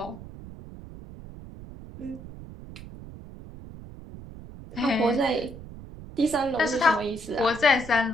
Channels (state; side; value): noise; right; rumble, 15 dB below the sound